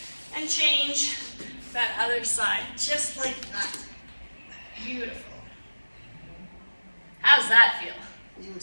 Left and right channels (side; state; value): both; inverted; correlation -1.00